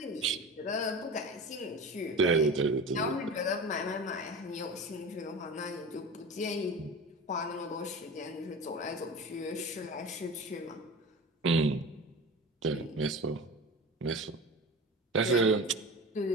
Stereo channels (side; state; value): both; normal; correlation 0.33